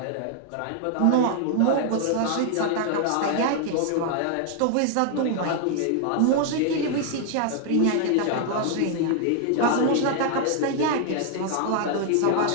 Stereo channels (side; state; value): both; different; correlation 0.00